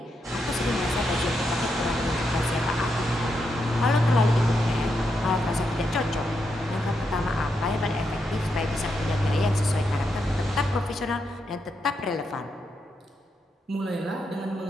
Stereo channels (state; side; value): normal; both; correlation 0.83